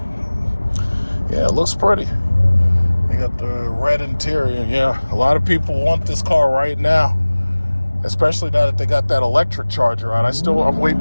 Yeah, it looks pretty. They got the red interior. Yeah, a lot of people want this car right now. Especially now that they got that electric charger out. I'm waiting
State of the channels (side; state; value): both; inverted; correlation -1.00